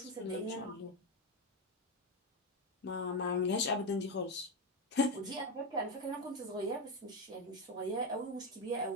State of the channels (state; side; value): normal; both; correlation 0.10